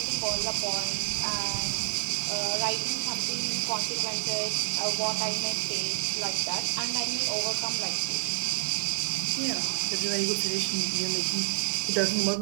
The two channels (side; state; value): left; silent; 59 dB below the other